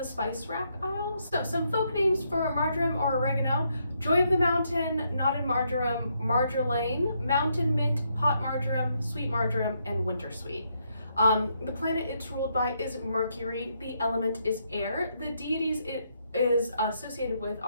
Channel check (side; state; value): both; inverted; correlation -0.77